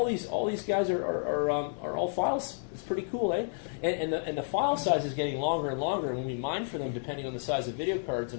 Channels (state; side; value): silent; right; digital silence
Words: these guys are all files. It's pretty cool, eh? And the file size is getting longer and longer. And when we mine for them, depending on the size of video cards